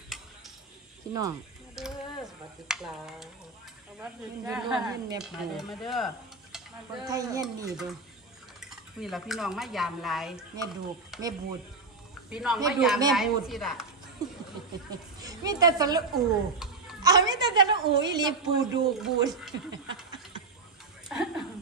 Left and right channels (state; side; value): quieter; left; 4.0 dB